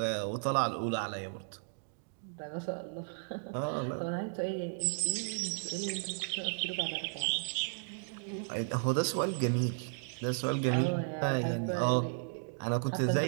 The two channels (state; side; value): silent; left; digital silence